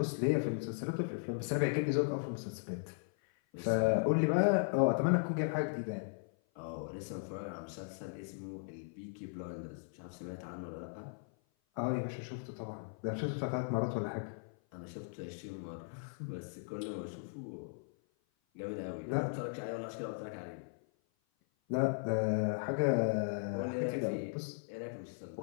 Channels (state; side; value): silent; right; 53 dB below the other